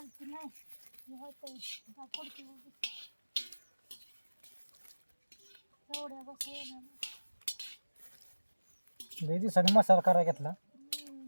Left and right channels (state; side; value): inverted; both; correlation -1.00